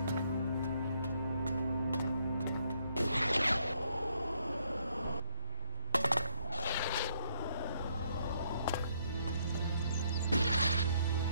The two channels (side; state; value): both; inverted; correlation -0.69